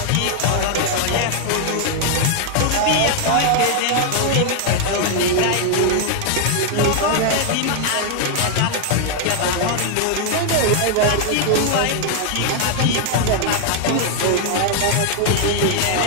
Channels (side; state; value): both; different; correlation 0.00